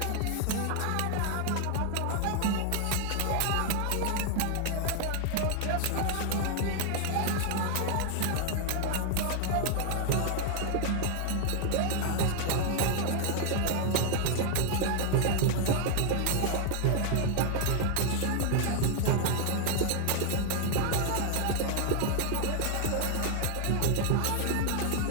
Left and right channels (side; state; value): both; different; correlation 0.00